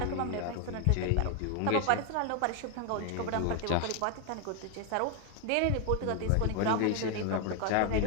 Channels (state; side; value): different; both; correlation 0.01